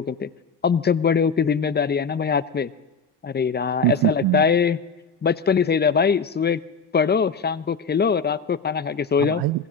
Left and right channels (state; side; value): quieter; right; 4.0 dB